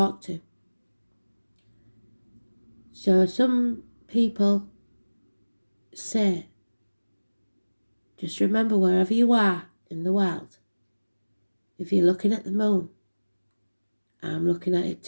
to. So some people say, just remember wherever you are in the world, if you're looking at the moon, I'm looking at it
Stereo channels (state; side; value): inverted; both; correlation -1.00